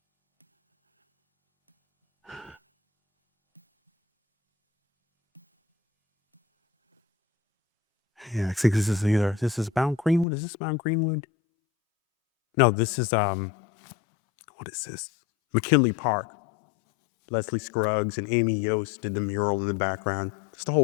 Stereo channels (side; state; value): right; drops out; at 10.2 s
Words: Yeah, I think this is Mount Greenwood. Is this Mount Greenwood? No, this is, what is this? McKinley Park. Leslie Scruggs and Amy Yost did the mural in the background. Just a